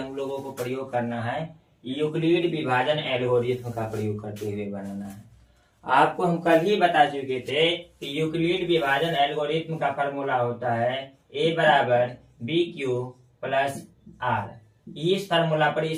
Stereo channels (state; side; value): identical; both; correlation 1.00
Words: लोगों को प्रयोग करना है यूक्लिड विभाजन एल्गोरिथम का प्रयोग करते हुए बनाना है। आपको हम कल ही बता चुके थे कि यूक्लिड विभाजन एल्गोरिथम का फॉर्मूला होता है ए बराबर बी क्यू प्लस आर। इस फॉर्मूला पर